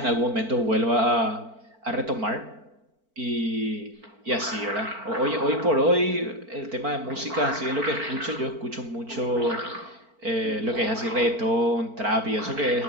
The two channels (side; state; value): left; late; 4.5 ms